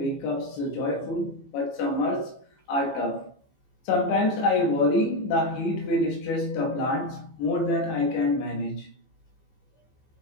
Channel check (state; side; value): late; right; 15 ms